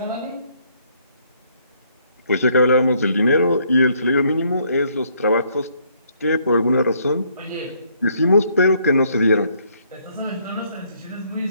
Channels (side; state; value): both; inverted; correlation -0.68